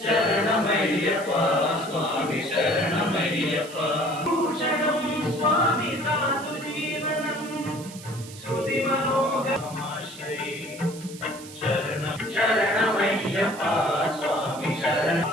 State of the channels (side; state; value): right; noise; hiss, 16 dB below the sound